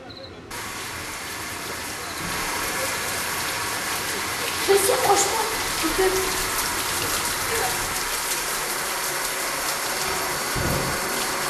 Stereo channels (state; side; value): identical; both; correlation 1.00